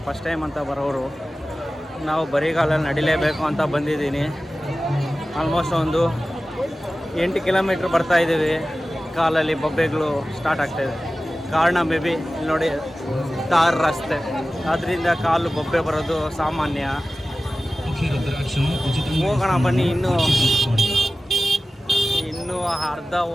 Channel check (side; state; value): both; normal; correlation 0.96